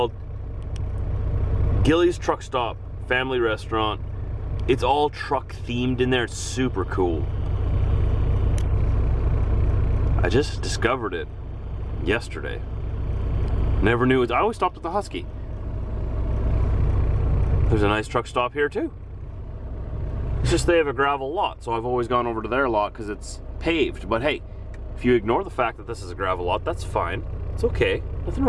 Gilly's Truck Stop Family Restaurant. It's all truck themed in there, it's super cool. I just discovered it yesterday. Never knew it. I always stopped at the Husky. There's a nice truck stop here too. It's just they have a gravel lot, so I've always gone over to their lot because it's paved. But hey, if you ignore the fact that this is a gravel lot, that's fine. It's okay. Nothing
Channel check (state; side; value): identical; both; correlation 1.00